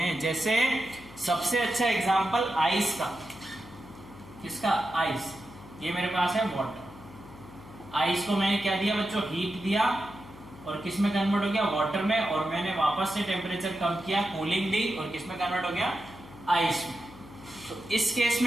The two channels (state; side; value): noise; left; hum, 18 dB below the sound